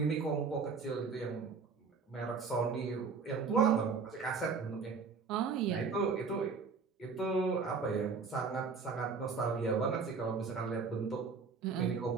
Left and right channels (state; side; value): quieter; left; 5.1 dB